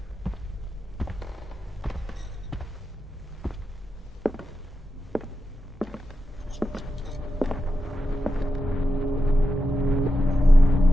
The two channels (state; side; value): normal; both; correlation 0.89